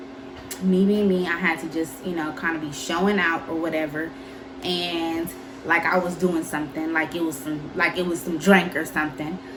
me being me, I had to just, kind of be showing out or whatever. And like I was doing something, like it was some drink or something.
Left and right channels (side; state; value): both; identical; correlation 1.00